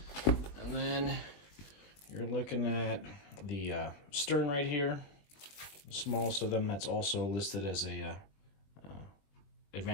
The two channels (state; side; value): late; right; 21 ms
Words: And then you're looking at the stern right here, the smallest of them. That's also listed as a